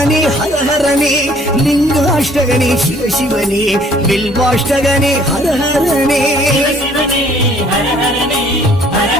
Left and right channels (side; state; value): both; normal; correlation 0.59